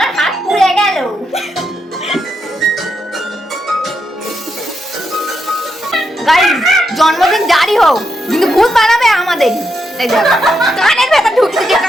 হাত পুড়ে গেল। গাইস জন্মদিন জারি হোক, কিন্তু ভূত বানাবে আমাদের। কানের ভেতর ঢুকছে, যে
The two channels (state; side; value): normal; both; correlation 0.82